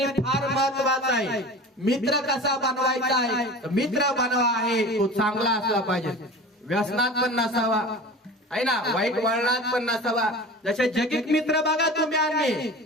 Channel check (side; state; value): both; normal; correlation 0.35